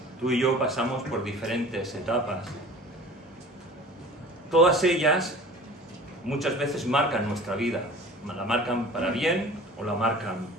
tú y yo pasamos por diferentes etapas. Todas ellas muchas veces marcan nuestra vida, la marcan para bien o la marcan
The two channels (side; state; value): both; normal; correlation 0.42